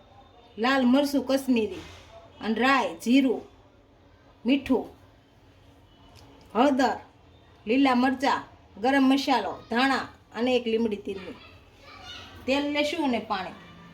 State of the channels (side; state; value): both; identical; correlation 1.00